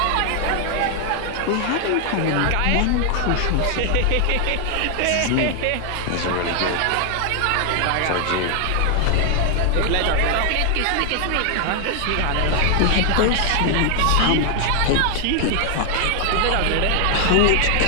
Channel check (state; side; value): different; both; correlation 0.00